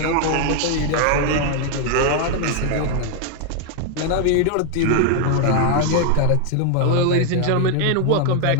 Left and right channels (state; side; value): different; both; correlation 0.00